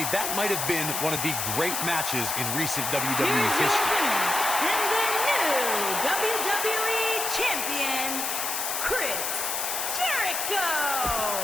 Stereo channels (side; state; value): left; noise; hiss, 1 dB below the sound